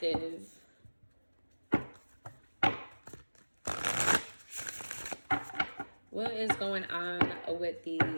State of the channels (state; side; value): inverted; both; correlation -1.00